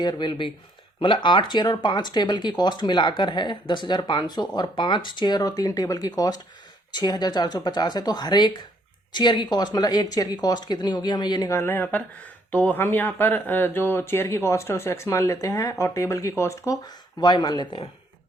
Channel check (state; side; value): normal; both; correlation 0.68